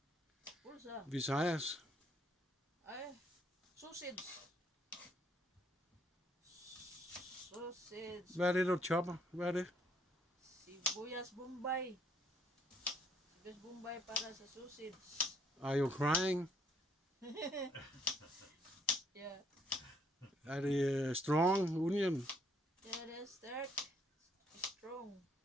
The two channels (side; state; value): both; normal; correlation 0.67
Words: pulsa. Visayas. Ay, sausage. Sausage. Hvad er det, du chopper? Hvad er det? Sibuyas Bombay. Sibuyas Bombay para sa sausage. Are you crying? Yeah. Er det strong onion? Yeah, det er stærk. Strong.